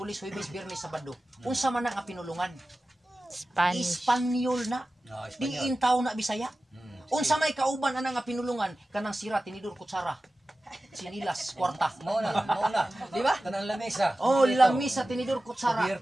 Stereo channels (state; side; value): normal; both; correlation 0.95